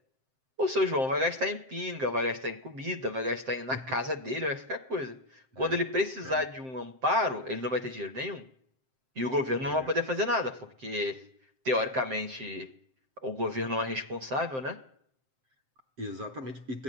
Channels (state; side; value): late; left; 7.7 ms